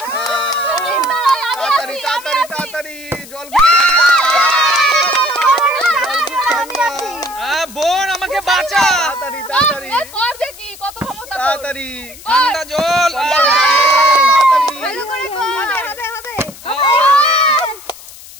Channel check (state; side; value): noise; left; hiss, 18 dB below the sound